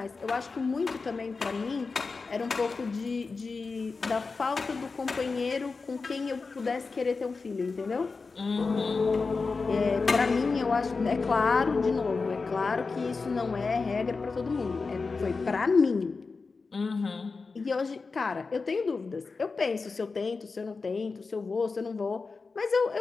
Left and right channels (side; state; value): right; quieter; 4.3 dB